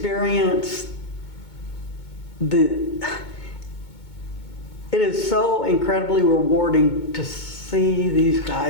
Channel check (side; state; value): right; late; 2.2 ms